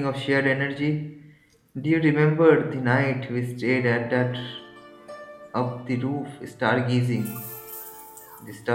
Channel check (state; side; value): identical; both; correlation 1.00